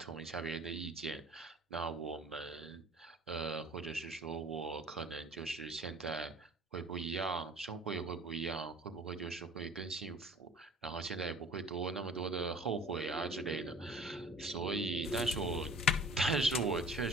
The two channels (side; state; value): both; normal; correlation 0.47